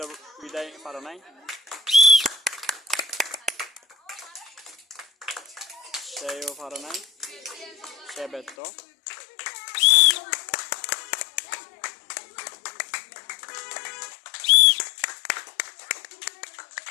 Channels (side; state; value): right; drops out; at 8.6 s